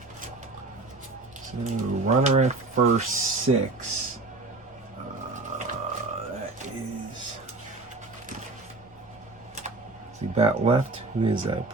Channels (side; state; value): left; quieter; 3.4 dB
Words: So runner at first, 6. That is. See, bat left. Who is that?